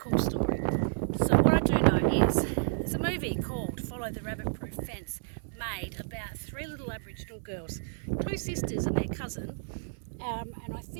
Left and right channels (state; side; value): silent; left; digital silence